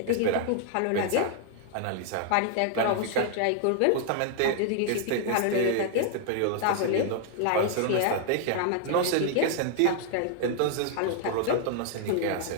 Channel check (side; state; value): both; different; correlation 0.00